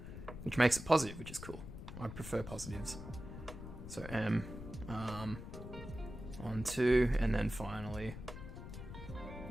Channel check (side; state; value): left; noise; rumble, 10 dB below the sound